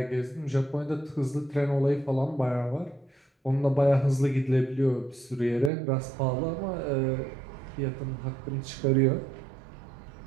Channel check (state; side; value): drops out; left; at 5.7 s